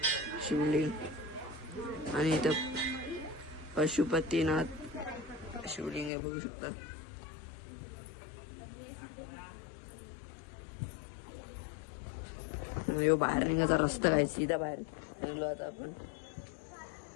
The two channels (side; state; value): right; drops out; at 6.1 s